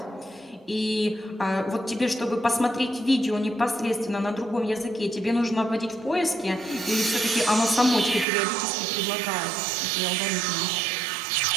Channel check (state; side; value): drops out; left; at 8.2 s